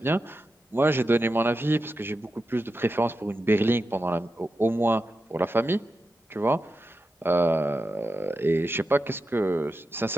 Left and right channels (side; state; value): both; normal; correlation 0.89